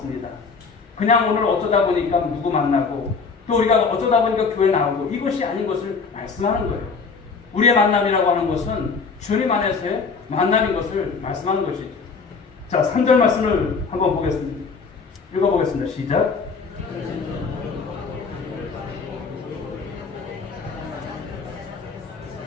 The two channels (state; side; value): quieter; right; 5.0 dB